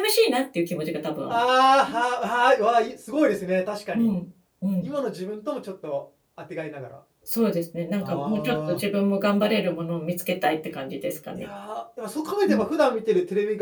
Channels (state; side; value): identical; both; correlation 1.00